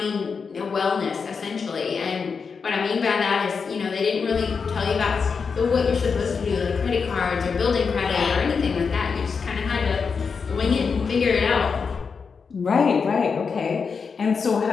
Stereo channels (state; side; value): quieter; right; 5.5 dB